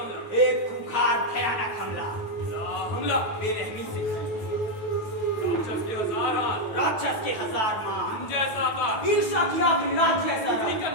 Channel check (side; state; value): right; late; 9.3 ms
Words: एक खूंखार भयानक हमला हमला बेरहमी से राक्षस के हजार हाथ, राक्षस के हजार मान जैसा आकार, ईर्ष्या की आग रात जैसा रंग, निकल